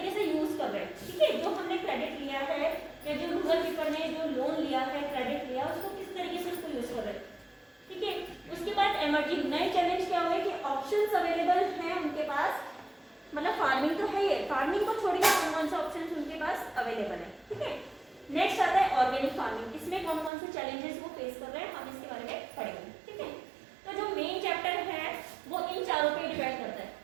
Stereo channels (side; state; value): left; drops out; at 20.3 s